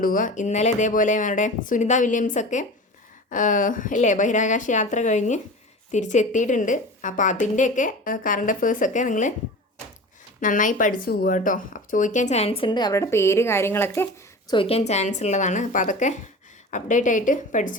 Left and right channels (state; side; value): normal; both; correlation 0.34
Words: ഇന്നലെ ഇതേപോലെ നമ്മുടെ സുനിത വില്യംസൊക്കെ അല്ലേ ബഹിരാകാശ യാത്ര കഴിഞ്ഞ് തിരിച്ചെത്തിയിട്ടുണ്ട്. അപ്പോൾ അതിൻ്റെയൊക്കെ കറണ്ട് അഫയേഴ്സൊക്കെ നിങ്ങൾ നന്നായി പഠിച്ചു പോവുക കേട്ടോ. അപ്പോൾ ചോദിക്കാൻ ചാൻസ് ഉണ്ട്, അവരുടെ പേര് കാര്യങ്ങളൊക്കെ ചോദിക്കാൻ ചാൻസ് ഉള്ളതാണ്. അപ്പോൾ അതൊക്കെ അപ്ഡേറ്റ് ആയിട്ട്